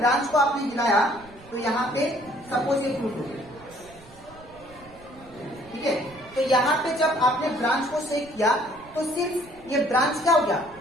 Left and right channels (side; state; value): right; noise; rumble, 23 dB below the sound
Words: को आपने हिलाया तो यहाँ पे सपोज ये फ्रूट हो गया, ठीक है, तो यहाँ पे जब आपने ब्रांच को शेक किया तो सिर्फ ये ब्रांच क्या हो गया,